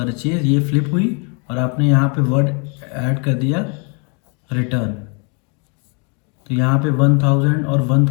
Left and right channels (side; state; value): right; quieter; 35.7 dB